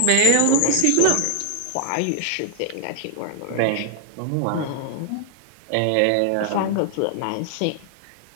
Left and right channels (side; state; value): both; different; correlation 0.00